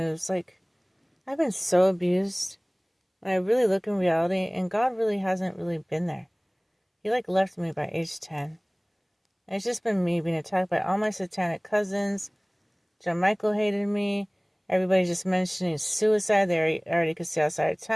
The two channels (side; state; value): both; identical; correlation 1.00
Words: Like, I've been so abused. When I really look in reality, and God really hasn't really been there. He left me by age 10. And it's just been me being attacked by all my satanic cousins. John Michael hated me. Everybody just mentioning suicide. They already could see outside of